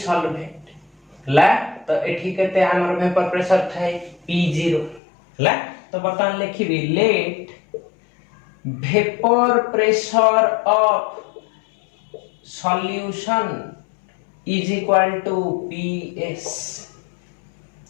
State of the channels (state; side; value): drops out; right; at 5.0 s